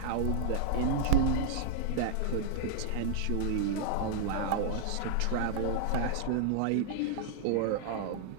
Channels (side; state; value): both; different; correlation -0.01